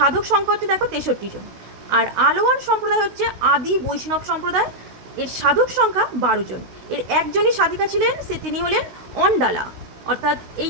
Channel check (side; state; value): left; late; 16 ms